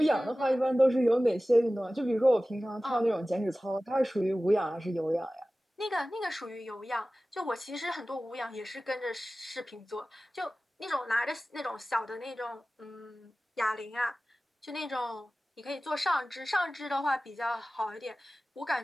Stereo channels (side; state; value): both; normal; correlation 0.97